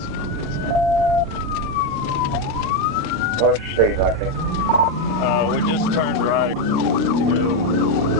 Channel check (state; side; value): normal; both; correlation 0.07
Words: What's your state like it? We just turned right to go